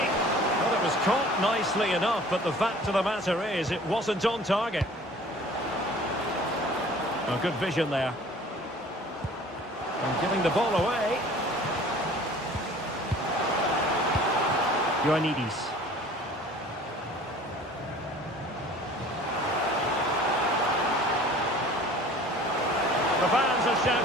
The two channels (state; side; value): normal; both; correlation 0.48